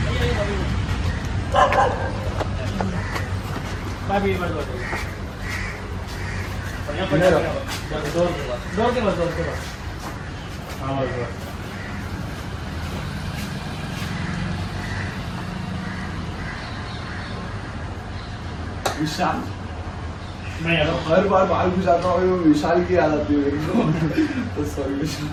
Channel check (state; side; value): identical; both; correlation 1.00